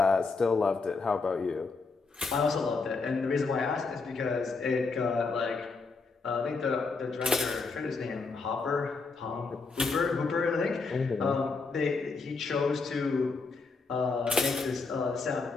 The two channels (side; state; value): right; quieter; 4.3 dB